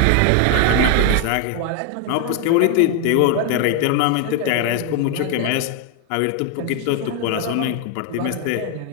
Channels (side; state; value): both; different; correlation 0.01